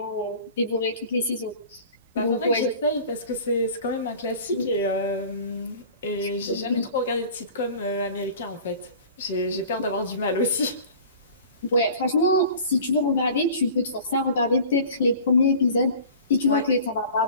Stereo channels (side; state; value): both; inverted; correlation -0.43